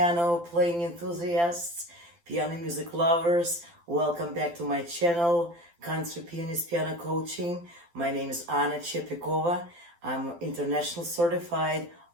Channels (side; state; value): left; late; 12 ms